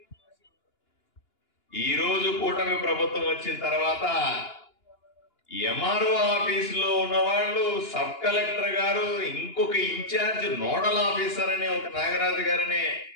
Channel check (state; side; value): late; right; 2.9 ms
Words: ఈ రోజు కూటమి ప్రభుత్వం వచ్చిన తర్వాత ఎంఆర్ఓ ఆఫీసులో ఉన్న వాళ్ళు సబ్ కలెక్టర్ గారు, ఇంకొక ఇన్ఛార్జ్ నోడల్ ఆఫీసర్ అనే ఒక నాగరాజు గారనే